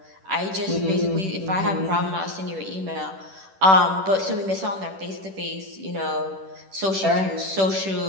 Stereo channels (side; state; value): left; late; 10 ms